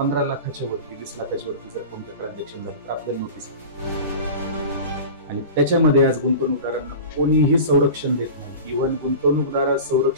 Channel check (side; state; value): both; inverted; correlation -0.33